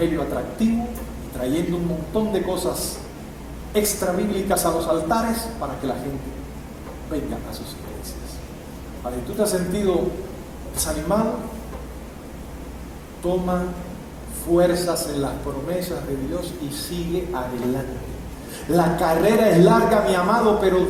atractivo, y trayendo un montón de cosas extra bíblicas a los altares para que la gente venga a sus iglesias. Vale, ¿tú te has sentido desanimado? Toma fuerzas en las promesas de Dios y sigue adelante. La carrera es larga, mi amado, pero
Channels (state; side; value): identical; both; correlation 1.00